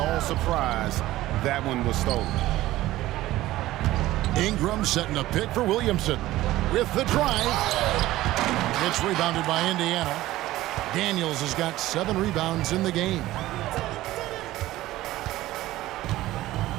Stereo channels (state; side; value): quieter; left; 16.1 dB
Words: surprised that one was stolen. Ingram setting a pick for Williamson with the drive. It's rebounded by Indiana. Daniels has got 7 rebounds in the game.